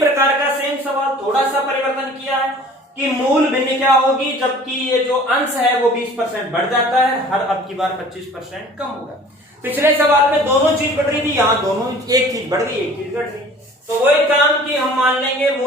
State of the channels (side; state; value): both; normal; correlation 0.48